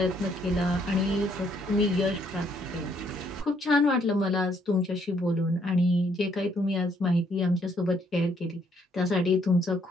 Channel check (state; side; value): normal; both; correlation 0.69